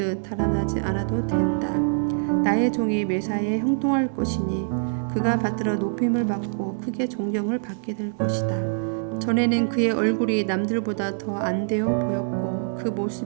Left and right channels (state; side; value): silent; left; digital silence